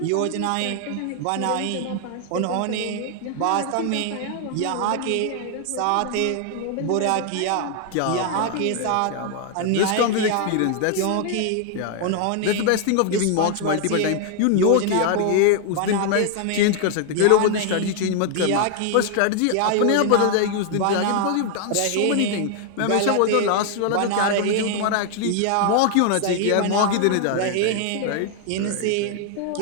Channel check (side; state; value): both; different; correlation 0.00